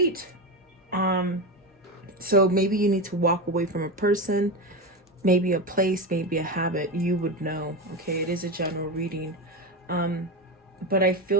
So maybe you need to walk away from a person, maybe a place, maybe a habit. You would know. Okay, it is a general reading. But I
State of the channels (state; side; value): normal; both; correlation 0.18